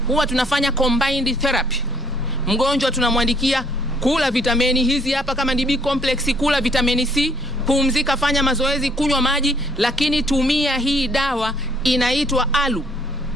huwa tunafanya combined therapy. Mgonjwa tunamwandikia kula vitamini hizi hapa, kama ni B complex kula vitamini C, pumzika, fanya mazoezi, kunywa maji, lakini tumia hii dawa inaitwa alu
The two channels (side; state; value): both; normal; correlation 0.64